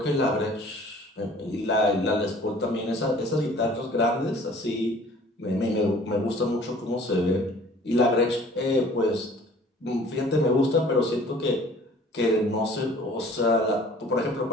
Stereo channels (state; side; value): normal; both; correlation 0.51